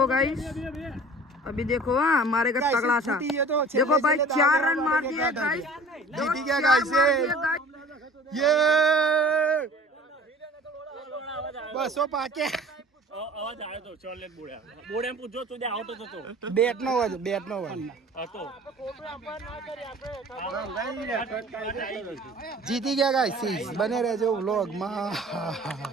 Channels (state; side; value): normal; both; correlation 0.47